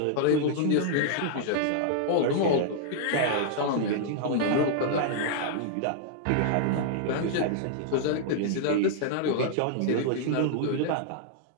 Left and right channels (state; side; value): different; both; correlation -0.01